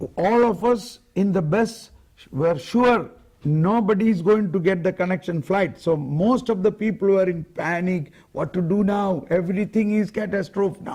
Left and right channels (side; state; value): both; identical; correlation 1.00